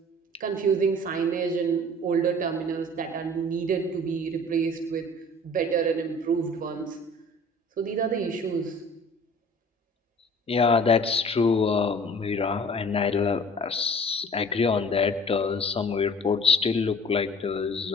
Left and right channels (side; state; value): both; normal; correlation 0.47